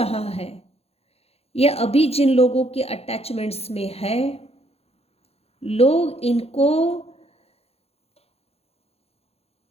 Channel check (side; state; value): right; late; 0.29 ms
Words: है, ये अभी जिन लोगों के अटैचमेंट्स में है, लोग इनको,